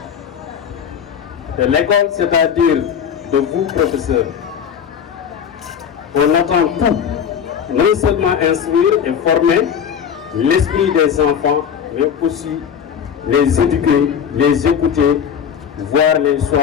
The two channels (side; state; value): right; quieter; 7.9 dB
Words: De l'école, c'est-à-dire de vous, professeurs, on attend tout, non seulement instruire et former l'esprit des enfants, mais aussi les éduquer, les écouter, voire les